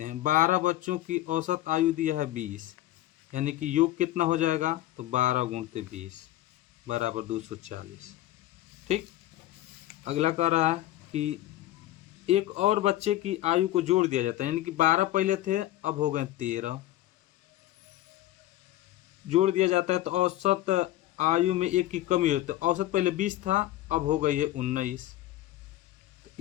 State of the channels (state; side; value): quieter; right; 14.8 dB